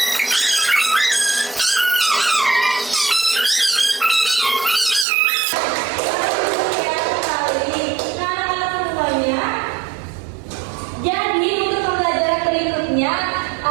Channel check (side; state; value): left; drops out; at 5.1 s